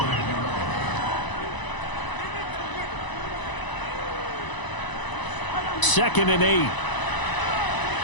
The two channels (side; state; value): right; late; 1.0 ms